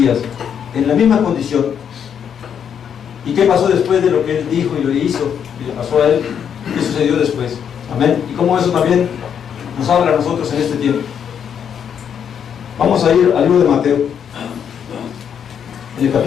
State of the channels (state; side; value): quieter; right; 8.1 dB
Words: en la misma condición. ¿Y qué pasó después de lo que Él dijo y lo hizo y le pasó a Él? ¿Qué sucedió después? Amén. Y cómo eso también nos habla a nosotros en este tiempo. Vamos a ir al libro de Mateo, en el